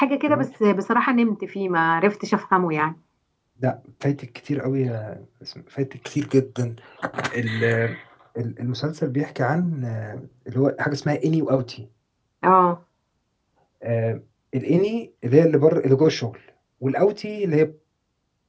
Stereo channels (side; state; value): both; identical; correlation 1.00